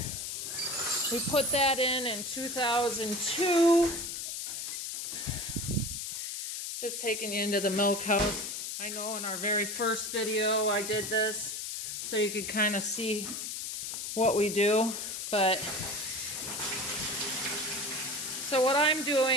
we put that in 2002. Just taking you into the milk house. I know in our very first video I did this so you could kind of see what we do. But so what I'm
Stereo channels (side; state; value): left; noise; hiss, 5 dB below the sound